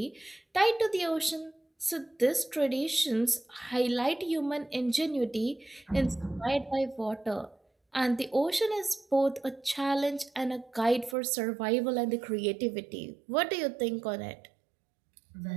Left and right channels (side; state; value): left; drops out; at 11.2 s